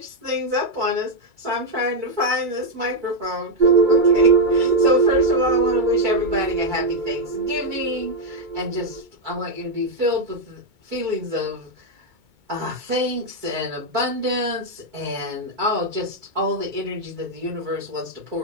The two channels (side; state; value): left; late; 2.2 ms